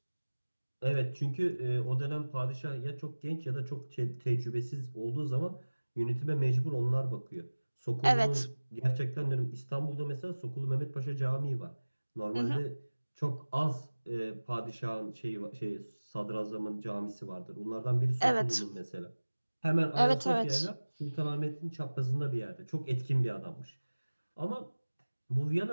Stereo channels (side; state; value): both; inverted; correlation -1.00